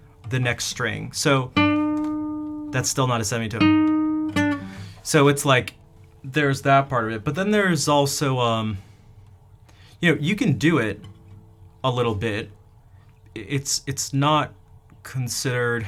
the next string. So that's still not a semitone. So it's like there's that part of it, but then there's also you can do it a little bit. It's not considered,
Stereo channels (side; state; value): both; identical; correlation 1.00